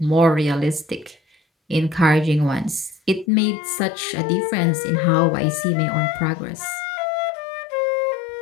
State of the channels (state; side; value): drops out; right; at 3.2 s